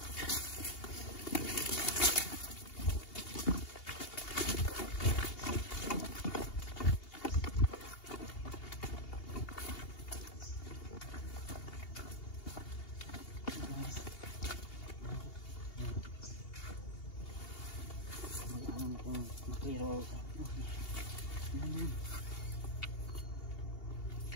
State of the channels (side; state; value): right; late; 2.8 ms